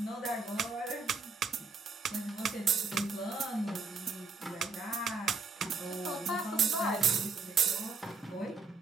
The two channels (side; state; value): left; quieter; 4.3 dB